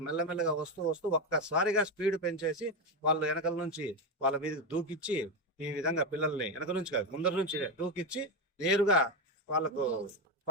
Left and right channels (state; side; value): normal; both; correlation 0.11